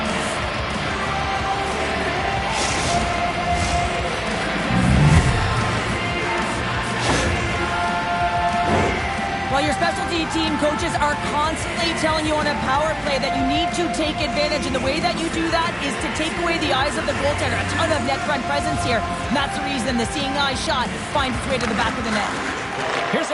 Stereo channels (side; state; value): both; identical; correlation 1.00